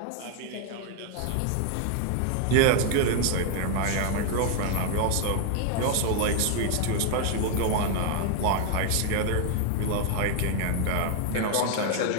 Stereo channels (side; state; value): both; different; correlation 0.00